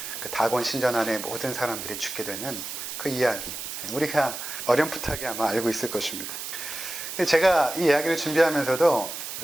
그 다곤 신전 안에 모든 사람들이 죽게 되는 그 이야기, 우리가 어렴풋하게 아마 알고 있을 것입니다. 근데 제가 이 이야기를 준비하면서도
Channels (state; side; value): noise; right; hiss, 7 dB below the sound